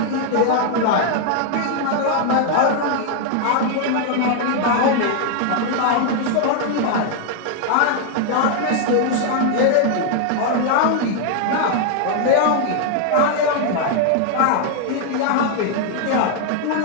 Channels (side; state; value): both; different; correlation 0.00